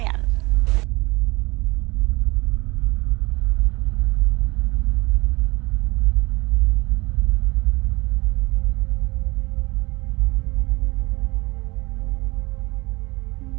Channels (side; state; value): left; quieter; 23.5 dB